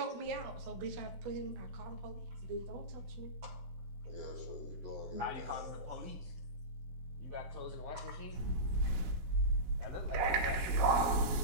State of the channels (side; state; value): left; late; 17 ms